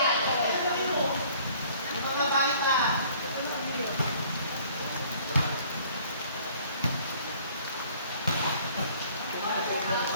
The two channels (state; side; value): inverted; both; correlation -0.55